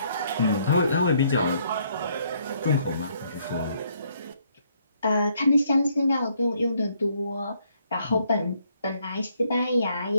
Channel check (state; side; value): inverted; both; correlation -0.69